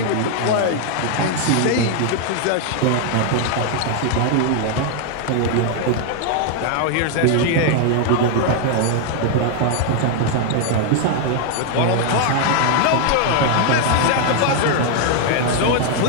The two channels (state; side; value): different; both; correlation 0.00